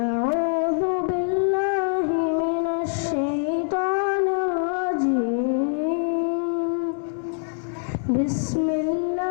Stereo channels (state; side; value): silent; right; 59 dB below the other